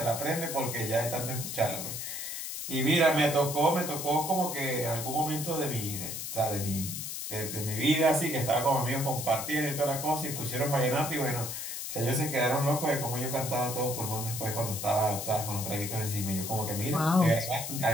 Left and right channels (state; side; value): noise; left; hiss, 5 dB below the sound